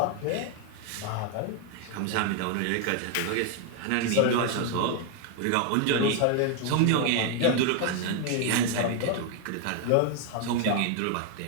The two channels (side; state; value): both; different; correlation 0.00